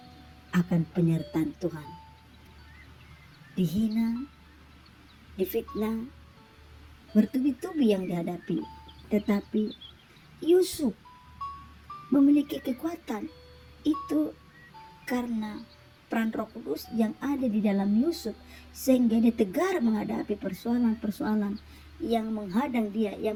akan penyertaan Tuhan. Dihina, difitnah, bertubi-tubi yang dihadapi, tetapi Yusuf memiliki kekuatan itu karena peran Roh Kudus yang ada di dalam Yusuf, sehingga dia tegar menghadapi persoalan-persoalan yang menghadang dia,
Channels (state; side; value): identical; both; correlation 1.00